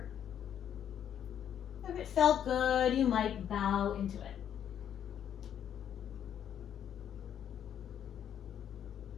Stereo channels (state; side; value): quieter; right; 9.5 dB